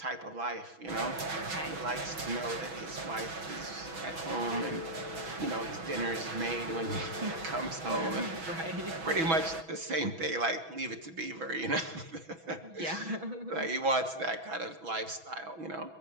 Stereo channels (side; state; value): left; late; 6.1 ms